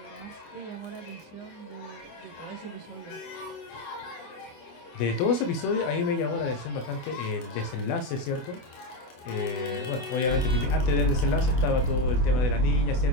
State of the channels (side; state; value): right; late; 24 ms